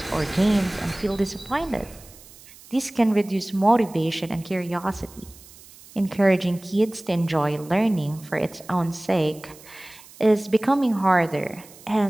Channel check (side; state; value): right; noise; hiss, 22 dB below the sound